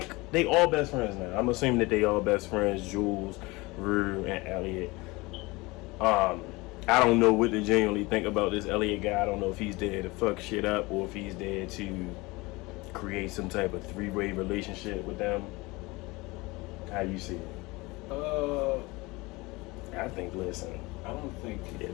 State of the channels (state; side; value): quieter; right; 23.2 dB